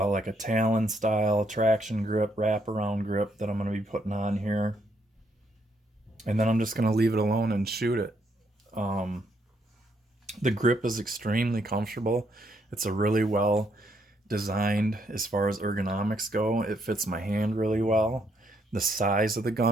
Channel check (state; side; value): normal; both; correlation 0.74